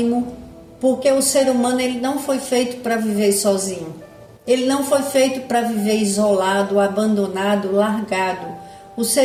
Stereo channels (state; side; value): identical; both; correlation 1.00